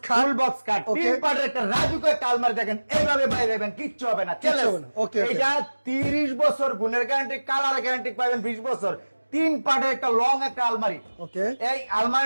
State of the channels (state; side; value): inverted; both; correlation -1.00